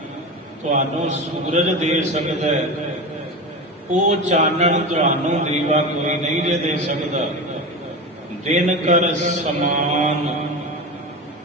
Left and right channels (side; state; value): both; normal; correlation 0.24